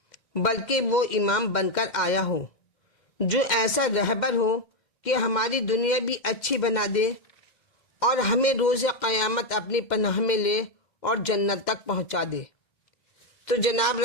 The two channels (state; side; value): late; right; 2.1 ms